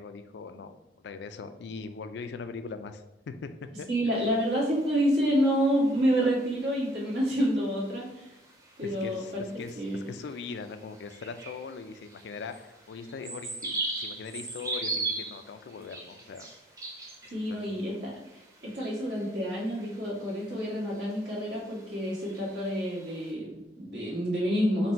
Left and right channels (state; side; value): normal; both; correlation 0.63